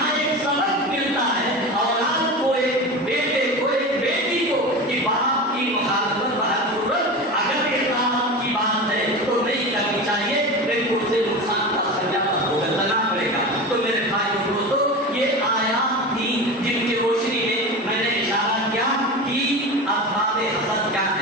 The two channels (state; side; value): normal; both; correlation 0.27